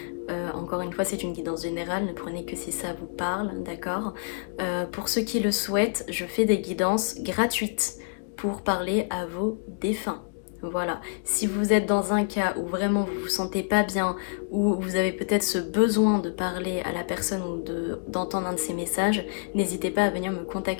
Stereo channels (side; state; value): right; silent; digital silence